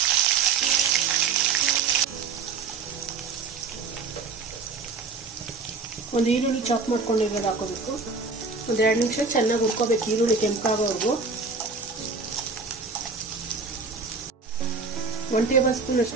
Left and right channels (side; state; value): left; quieter; 4.6 dB